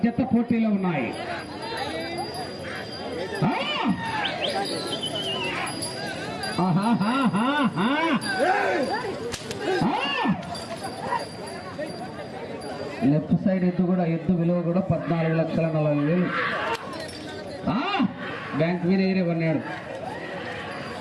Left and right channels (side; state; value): both; identical; correlation 1.00